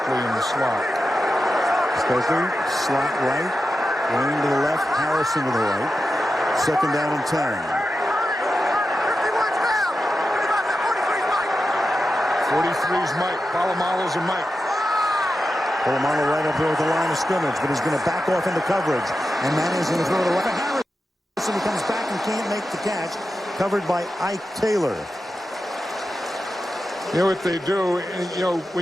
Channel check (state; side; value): normal; both; correlation 0.91